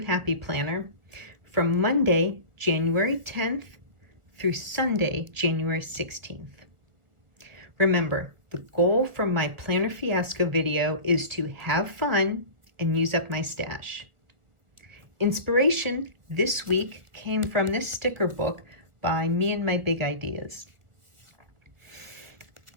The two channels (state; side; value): late; left; 1.6 ms